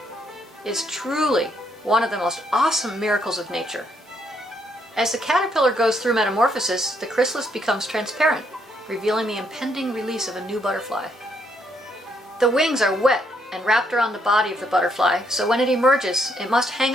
is truly one of the most awesome miracles of nature. As the caterpillar goes through metamorphosis, the chrysalis becomes transparent, revealing the impending release of a new butterfly. The wings are wet and wrapped around the body of the butterfly, so when it emerges, it must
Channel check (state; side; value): normal; both; correlation 0.73